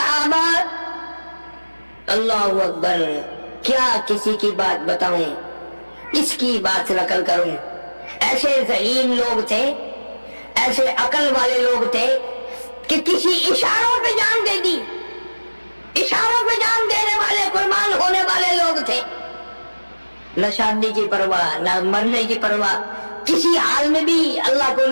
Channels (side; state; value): both; inverted; correlation -1.00